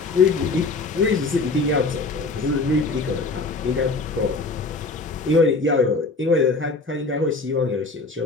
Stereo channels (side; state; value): right; quieter; 3.7 dB